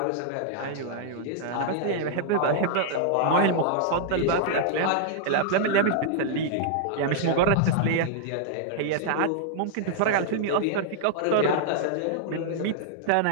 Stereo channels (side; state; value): both; different; correlation -0.01